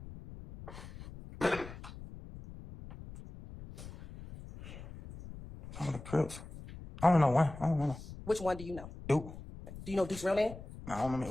Some of the Crips. I don't know one. I don't know. Which one do you know? Duke. Do you know Duke's real name? No, I don't remember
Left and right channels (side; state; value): left; noise; rumble, 14 dB below the sound